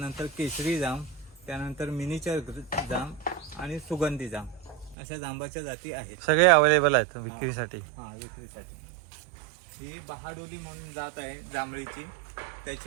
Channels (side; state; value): left; drops out; at 5.0 s